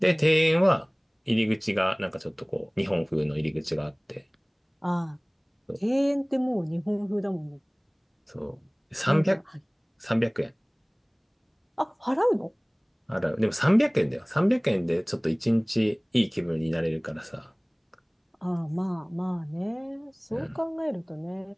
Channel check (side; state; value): both; identical; correlation 1.00